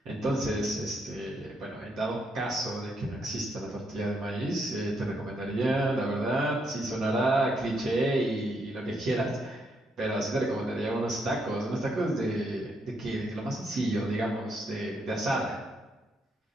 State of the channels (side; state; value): both; normal; correlation 0.76